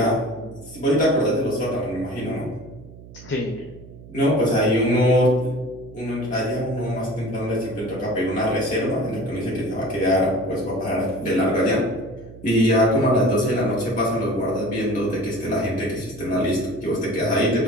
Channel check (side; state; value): right; noise; hum, 18 dB below the sound